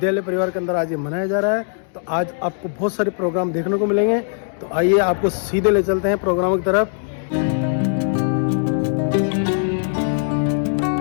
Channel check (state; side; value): silent; right; 66 dB below the other